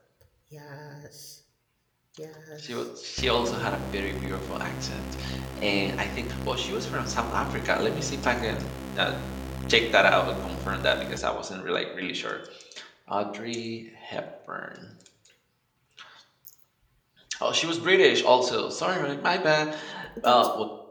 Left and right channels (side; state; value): both; identical; correlation 1.00